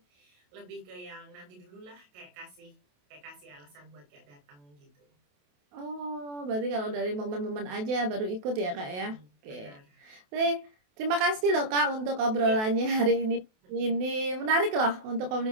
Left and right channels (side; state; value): left; late; 28 ms